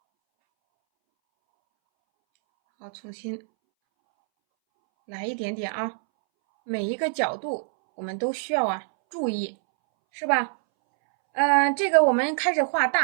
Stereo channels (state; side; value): silent; left; 62 dB below the other